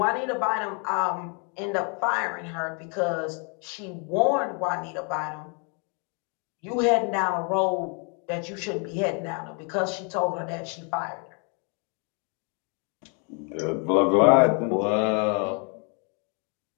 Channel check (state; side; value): quieter; right; 37.2 dB